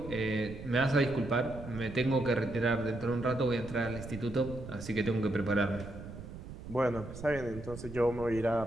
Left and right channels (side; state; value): right; noise; rumble, 12 dB below the sound